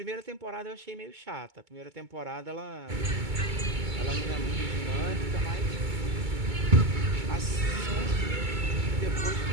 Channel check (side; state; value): left; late; 2.2 ms